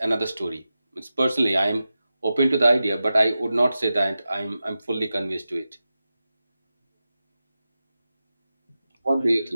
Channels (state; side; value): inverted; both; correlation -0.93